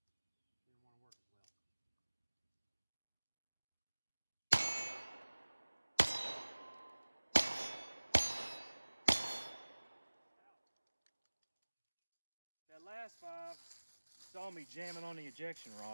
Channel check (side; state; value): both; inverted; correlation -1.00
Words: Didn't want to work as well. That last 5 saw me jamming on the ejection